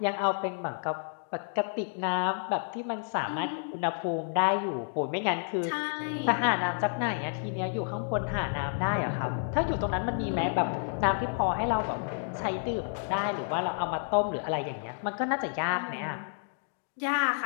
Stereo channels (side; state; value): right; silent; digital silence